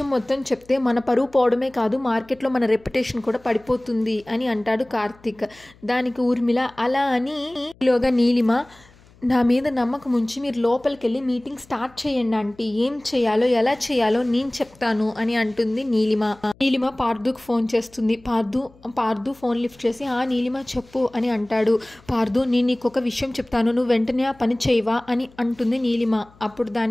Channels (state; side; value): noise; left; hum, 27 dB below the sound